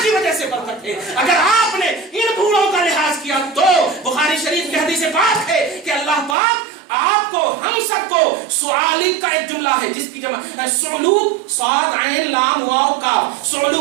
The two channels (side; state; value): left; drops out; at 6.4 s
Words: کی وجہ سے برکت ہے۔ اگر آپ نے ان بوڑھوں کا لحاظ کیا تو بخاری شریف کی حدیث پاک ہے کہ اللہ پاک آپ کو، ہم سب کو، سعالق کا ایک جملہ ہے جس کی جمع سعلوق، صاد عین لام واو کاف،